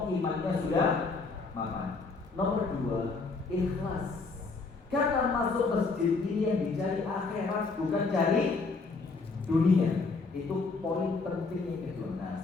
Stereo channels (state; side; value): quieter; right; 4.1 dB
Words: imannya sudah mapan. Nomor 2, ikhlas. Karena masuk masjid ini yang dicari akhirat, bukan cari dunia. Itu poin penting yang kedua. Nah,